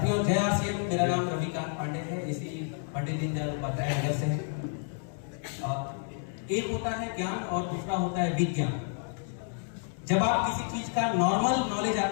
जय आरसीएम। मेरा नाम रविकांत पांडे है, इसी पंडित दीनदयाल उपाध्याय नगर से है। एक होता है ज्ञान और दूसरा होता है विज्ञान। जब आप किसी चीज का नॉर्मल नॉलेज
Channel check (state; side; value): silent; right; 58 dB below the other